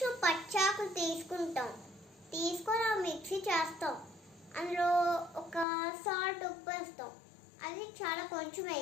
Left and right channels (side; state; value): right; drops out; at 5.7 s